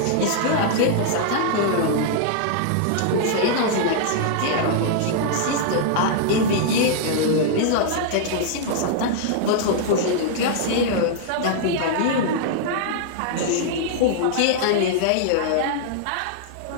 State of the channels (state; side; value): different; both; correlation -0.01